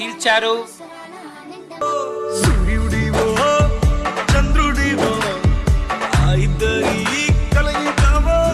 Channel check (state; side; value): identical; both; correlation 1.00